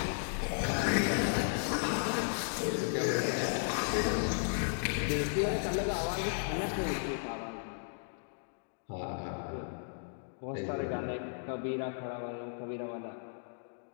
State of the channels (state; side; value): silent; right; digital silence